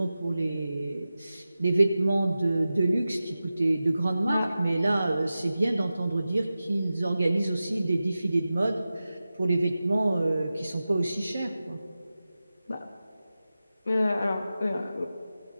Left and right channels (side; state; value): both; inverted; correlation -0.94